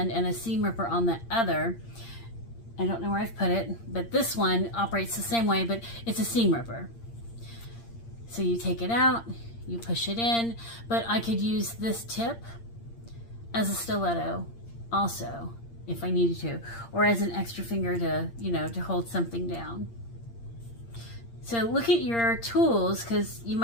and a seam ripper on the other, I don't know where I've put it, but this one operates the same way, but it's a seam ripper. So you take it out, you push it in, but I could use this tip as a stiletto also, if I needed to, or as an extra finger to, you know, to hold something down. So look at your tools, because you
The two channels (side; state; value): right; late; 8.7 ms